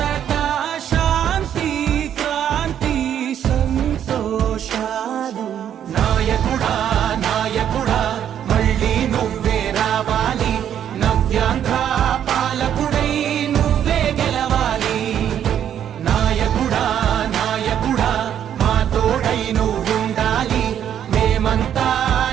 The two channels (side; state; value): left; quieter; 9.7 dB